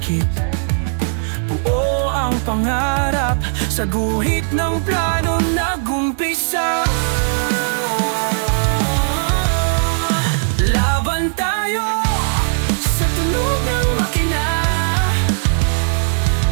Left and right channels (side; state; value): left; silent; digital silence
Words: Buo ang pangarap, sa guhit ng plano nag-umpisa. Laban tayo sa tunog ng makina,